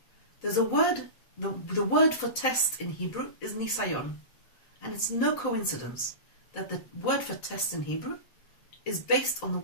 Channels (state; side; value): late; right; 7.9 ms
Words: There's a word, the word for test in Hebrew is nisayon. And it's no coincidence that the word for test in Hebrew is based on the